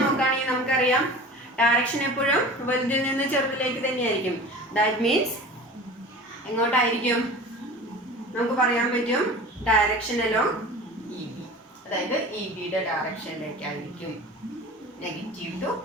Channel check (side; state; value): both; normal; correlation 0.38